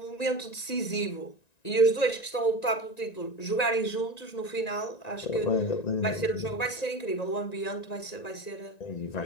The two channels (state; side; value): late; right; 1.9 ms